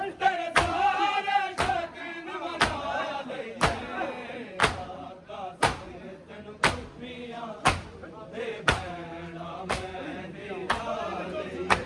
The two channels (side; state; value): both; identical; correlation 1.00